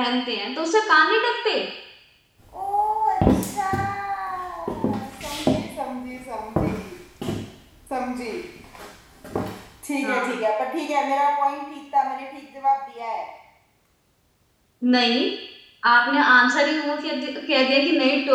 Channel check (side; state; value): both; identical; correlation 1.00